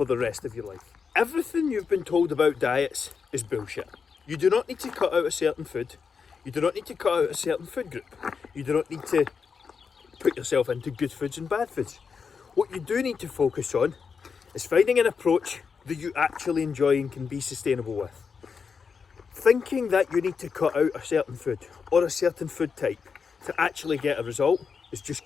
the rest of your life. Everything you've been told about diets is bullshit. You do not need to cut out a certain food. You do not need to cut out a certain food group. You do not need to put yourself into good foods and bad foods. What you do need to focus on is finding an approach that you actually enjoy and can be sustainable with. Thinking that you need to cut out a certain food or a certain food type to actually get a result is just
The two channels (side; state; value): right; quieter; 5.8 dB